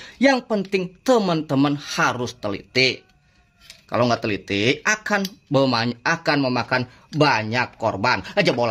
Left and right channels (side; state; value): both; identical; correlation 1.00